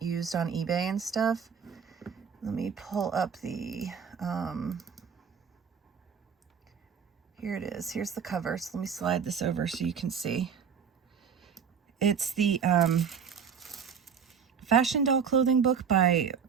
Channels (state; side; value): quieter; left; 6.9 dB